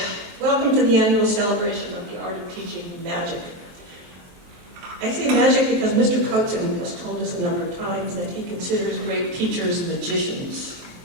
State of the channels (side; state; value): left; late; 23 ms